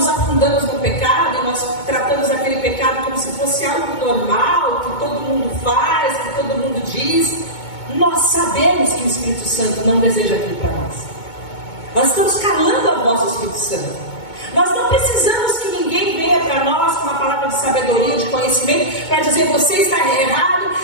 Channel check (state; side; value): late; right; 2.2 ms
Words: afundamos no pecado, e nós tratamos aquele pecado como se fosse algo normal, que todo mundo faz, que todo mundo diz, nós sabemos que o Espírito Santo não deseja aquilo para nós. Nós estamos calando a voz do Espírito Santo. Nós não precisamos que ninguém venha para nós com uma palavra de sabedoria, de conhecimento, para dizer você está errado,